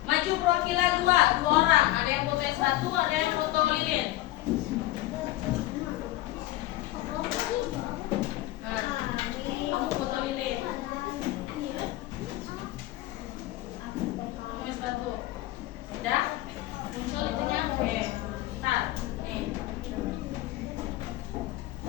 Maju perwakilan 2 orang. Ada yang foto es batu, ada yang foto lilin. Nah, kamu foto lilin. Es batu. Udah? Muncul itunya? Oke. Ntar. Nih.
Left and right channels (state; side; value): quieter; right; 16.8 dB